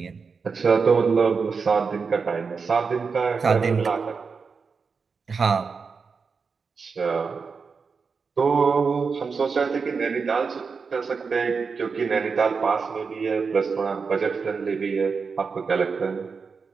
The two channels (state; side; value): quieter; left; 5.2 dB